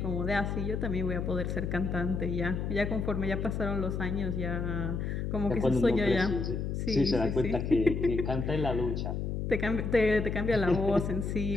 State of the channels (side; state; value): left; noise; hum, 2 dB below the sound